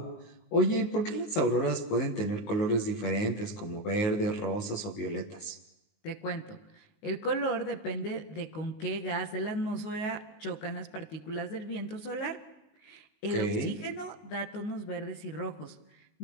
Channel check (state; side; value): late; right; 19 ms